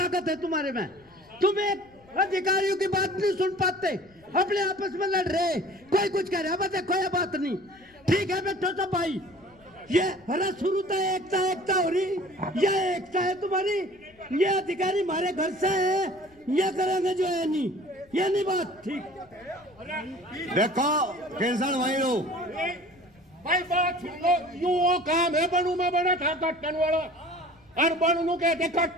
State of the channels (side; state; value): left; noise; rumble, 29 dB below the sound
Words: है तुम्हारे में? तुम एक अधिकारियों की बात नहीं सुन पाते, अपने आपस में लड़ रहे, कोई कुछ कह रहा, बस कोई बात नहीं। ठीक है बैठो सब भाई, ये अरे शुरू तो एकता एकता हो रही, ये एकता है तुम्हारी, ये अधिकारी हमारे घर से है, ये करेंगे जो है नहीं, ये नहीं बात ठीक। देखो केसर भाई लोग, भाई बात सुन लो, यू वो काम है बनू में बना था कट्टन वाला, और बनू नु कहते